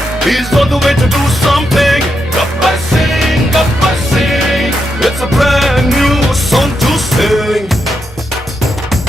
he's on the way to do something Gabbar Singh it's a brand new song to sing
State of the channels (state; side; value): normal; both; correlation 0.83